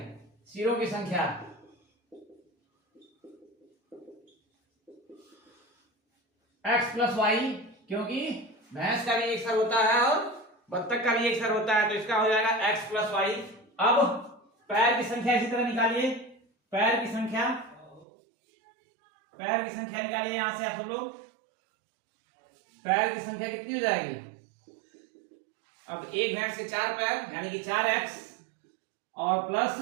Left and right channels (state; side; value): drops out; left; at 18.1 s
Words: सिरों की संख्या x प्लस वाई, क्योंकि भैंस का भी एक सर होता है और बत्तख का भी एक सर होता है, तो इसका हो जाएगा x प्लस वाई। अब पैर की संख्या इसी तरह निकालिए, पैर की संख्या निकालिए यहां से आप सब लोग, पैर की संख्या कितनी हो जाएगी। अब एक भैंस के 4 पैर यानी कि 4x और प्लस